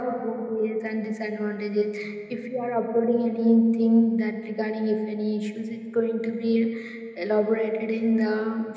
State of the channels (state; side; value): identical; both; correlation 1.00